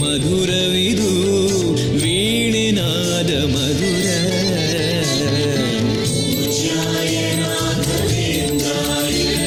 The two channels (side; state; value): both; identical; correlation 1.00